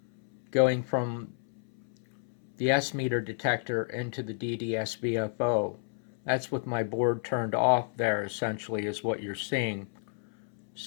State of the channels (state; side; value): silent; right; 57 dB below the other